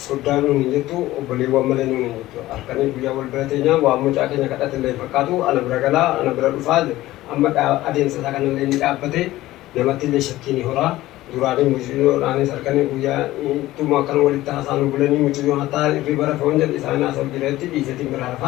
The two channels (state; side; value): quieter; right; 16.4 dB